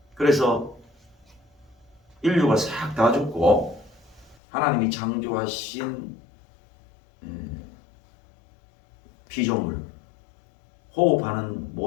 그래서 인류가 싹 다 죽고 하나님이 창조하신 피조물, 호흡하는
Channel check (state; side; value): drops out; right; at 4.4 s